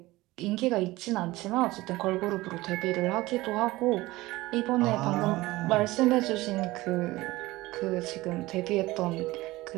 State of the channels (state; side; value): quieter; left; 19.2 dB